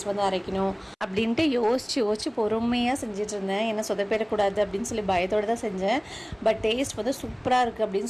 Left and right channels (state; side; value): identical; both; correlation 1.00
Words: வந்து அரைக்கணும் அப்படின்ட்டு யோசிச்சு பொறுமையாக செஞ்சுட்டு இருந்தேன். ஏன்னா சொதப்பிடக்கூடாது அப்படின்னு சொல்லி பயத்தோடு தான் செஞ்சேன். பட் டேஸ்ட் வந்து சூப்பராக இருக்குது